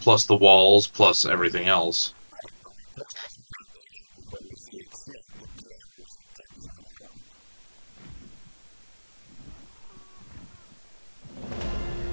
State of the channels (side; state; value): both; inverted; correlation -1.00